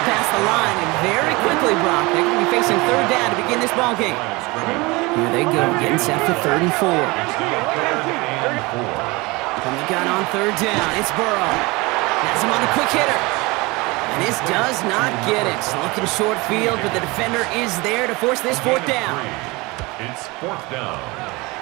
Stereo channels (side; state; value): left; quieter; 24.2 dB